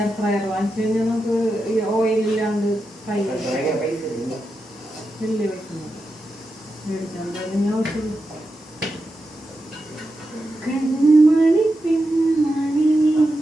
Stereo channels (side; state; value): both; normal; correlation 0.88